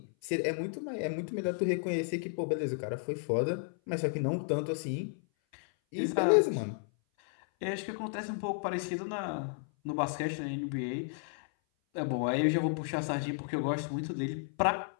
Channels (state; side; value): silent; right; 56 dB below the other